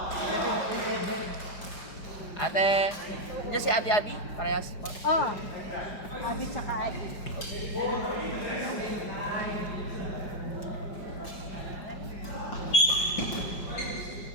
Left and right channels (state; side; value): late; right; 4.8 ms